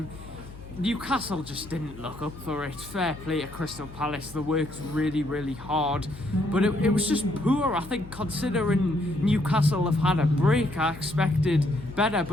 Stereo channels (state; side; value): noise; left; hum, 16 dB below the sound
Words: Newcastle just didn't look up for it. Fair play to Crystal Palace. They worked really, really hard. But it was just poor. I think considering Newcastle have had a break, I expected better.